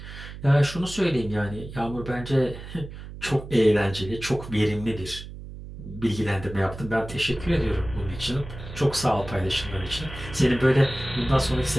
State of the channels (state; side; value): noise; right; hum, 12 dB below the sound